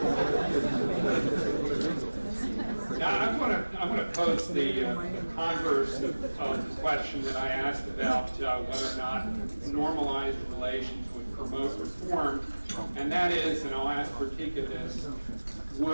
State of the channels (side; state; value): both; inverted; correlation -1.00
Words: Now, I want to pose the converse of the question that I asked about whether or not normalized relations would promote reform, and that is, and I'll ask Bertica this,